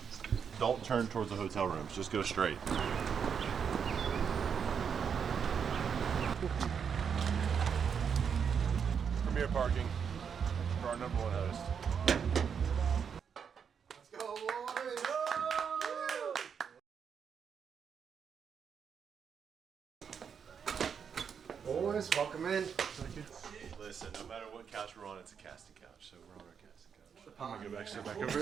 Don't turn towards the hotel rooms. Just go straight. Premier parking for our #1 host. Let's go, boys! Boys, welcome in. Listen, no matter what couch we're on, it's a casting couch, so we're on our casting couch. I'm gonna go sit back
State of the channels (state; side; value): quieter; left; 7.0 dB